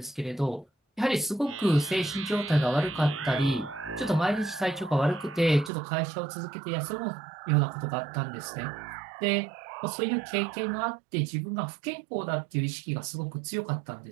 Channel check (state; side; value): drops out; left; at 5.7 s